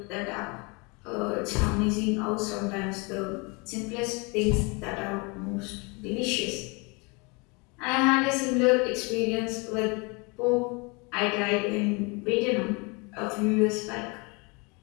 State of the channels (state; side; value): quieter; right; 29.6 dB